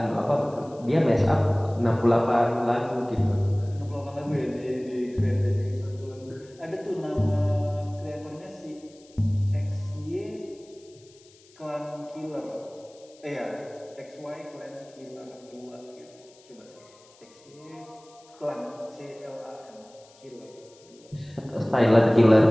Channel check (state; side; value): noise; left; hiss, 27 dB below the sound